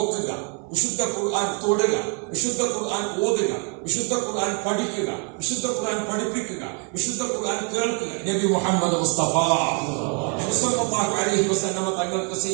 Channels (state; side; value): quieter; left; 37.2 dB